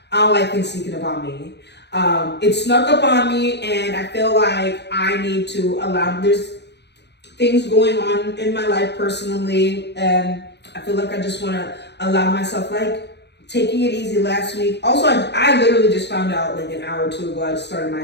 I don't like things sneaking up on me. It snuck up on me, and I feel like I need to there's things going on in my life personally, and I feel like I just want to allow myself, taking it easy last week. Also, I literally just found out an hour or 2 ago, I just started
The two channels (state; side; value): late; right; 0.50 ms